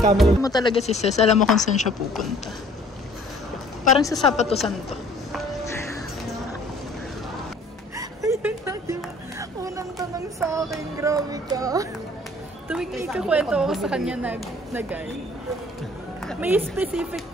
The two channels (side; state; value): both; normal; correlation 0.54